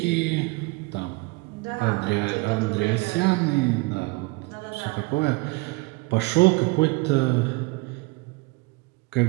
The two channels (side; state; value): left; quieter; 24.5 dB